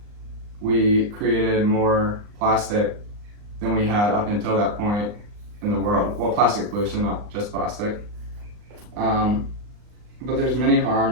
we created more plastic than we had up until that point in the world. Well, plastic pollution, not just plastic. But there's many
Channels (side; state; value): left; late; 39 ms